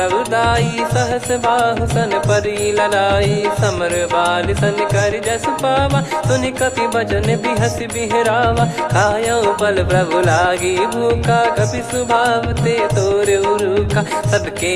सहस बाहु सन परी ललाई समर बाल सन कर जस पावा सुनि कपि भजन बिहस बिहरावा खायो पल प्रभु लागी भूखा कपि स्वभाव ते तोर उरुका सबके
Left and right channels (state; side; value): identical; both; correlation 1.00